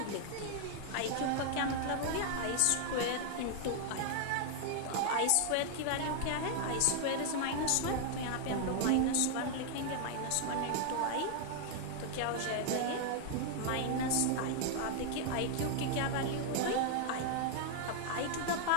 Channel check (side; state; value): both; different; correlation 0.00